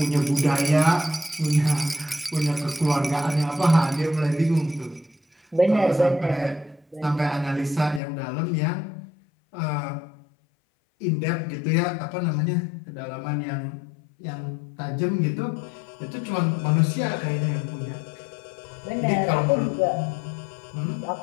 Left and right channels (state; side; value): drops out; right; at 8.0 s